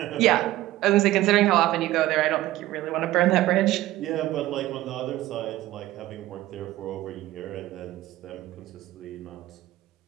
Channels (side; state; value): left; quieter; 15.9 dB